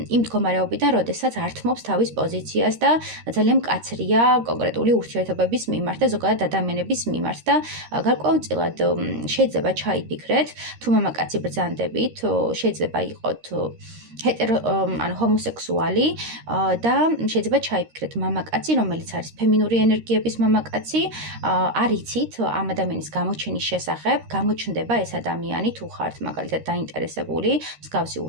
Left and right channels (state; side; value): late; left; 13 ms